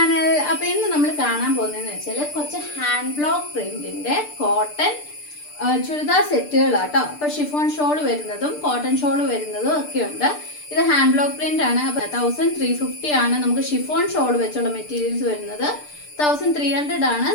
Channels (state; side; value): late; right; 6.7 ms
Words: അപ്പോൾ ഇന്ന് നമ്മൾ കാണാൻ പോകുന്നതെന്ന് വെച്ചാൽ കുറച്ച് ഹാൻഡ് ബ്ലോക്ക് പ്രിന്റിന്റെ കോട്ടൺ ചുരിദാർ സെറ്റുകളാട്ടോ. അപ്പോൾ ഷിഫോൺ ഷോൾ വരുന്നതും കോട്ടൺ ഷോൾ വരുന്നതും ഒക്കെ ഉണ്ട്. ഇത് ഹാൻഡ് ബ്ലോക്ക് പ്രിന്റ് ആണ്. അപ്പോൾ 1350 ആണ് നമുക്ക് ഷിഫോൺ ഷോൾ വെച്ചുള്ള മെറ്റീരിയൽസ് വരുന്നത്. 1300 ആണ്